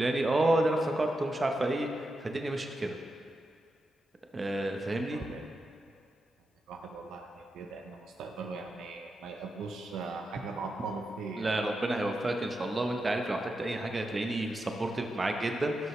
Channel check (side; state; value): both; normal; correlation 0.87